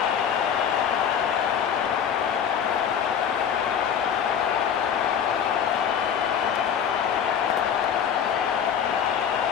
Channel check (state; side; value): quieter; right; 8.1 dB